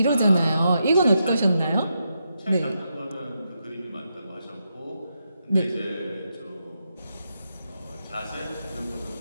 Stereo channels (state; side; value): inverted; both; correlation -0.84